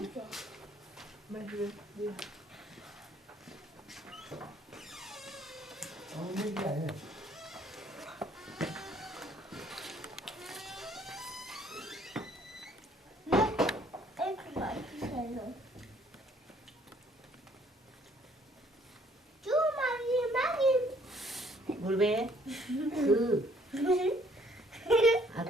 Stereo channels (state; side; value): normal; both; correlation 0.62